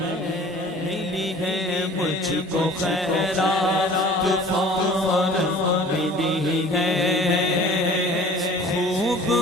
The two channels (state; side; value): normal; both; correlation 0.47